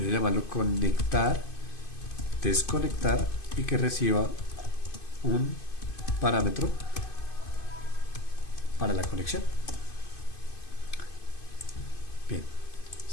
a llamarlo conectar, desconectar, y que reciba un parámetro para la conexión. Bien,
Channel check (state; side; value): late; right; 2.5 ms